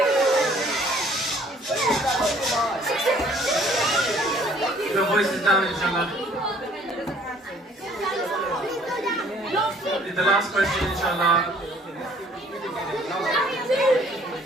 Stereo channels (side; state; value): both; normal; correlation 0.58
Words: Your voice is down, inshallah. The last question, inshallah.